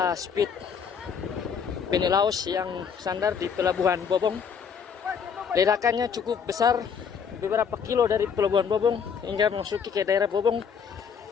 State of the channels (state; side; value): quieter; right; 6.8 dB